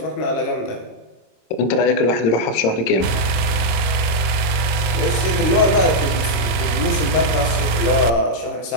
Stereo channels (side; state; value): right; late; 25 ms